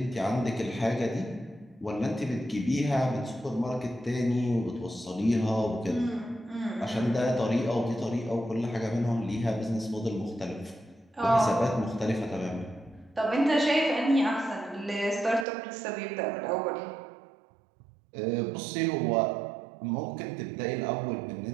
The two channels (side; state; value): left; drops out; at 15.5 s